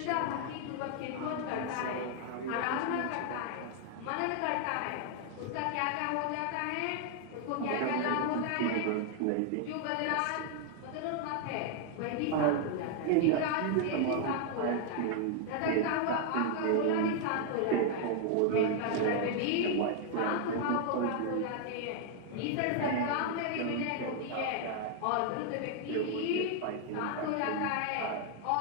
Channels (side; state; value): both; different; correlation 0.00